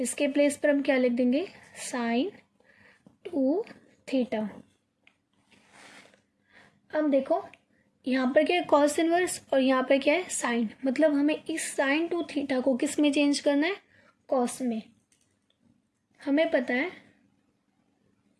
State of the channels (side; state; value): both; identical; correlation 1.00